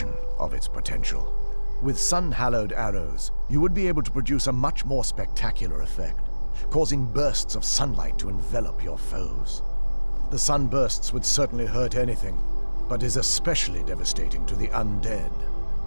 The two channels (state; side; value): inverted; both; correlation -1.00